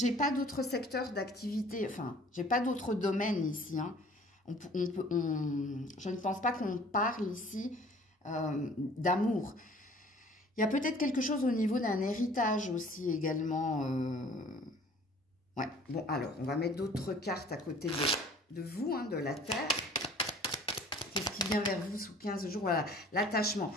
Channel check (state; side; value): normal; both; correlation 0.51